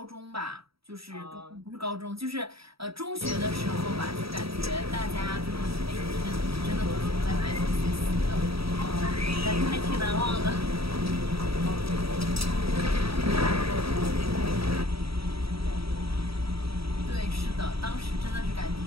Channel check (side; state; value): left; late; 0.76 ms